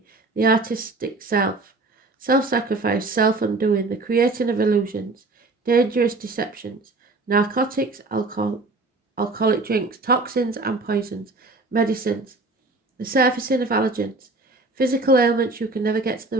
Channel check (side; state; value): left; quieter; 3.3 dB